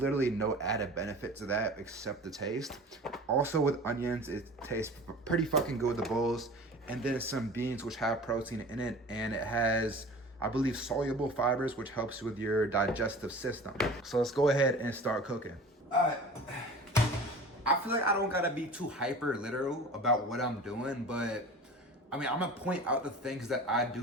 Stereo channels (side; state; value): both; normal; correlation 0.40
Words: no added benefit to that except the taste. Also with onions, it tastes pretty fucking good with the bowls. And then some beans, which have protein in it, and it has, I believe, soluble fibers, which helps with your digestive system. So let's go ahead and start cooking. I feel like I don't gotta be too hyper literal about what I'm doing, but I mean, I'm gonna point out the things that I